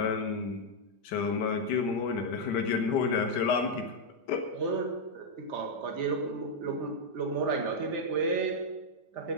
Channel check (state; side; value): late; right; 5.1 ms